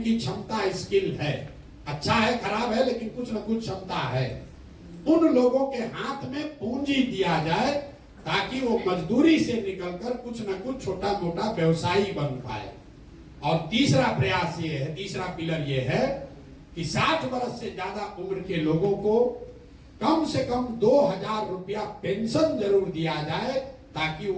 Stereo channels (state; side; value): identical; both; correlation 1.00